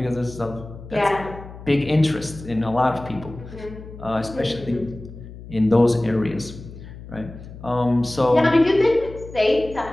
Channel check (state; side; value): noise; left; hum, 15 dB below the sound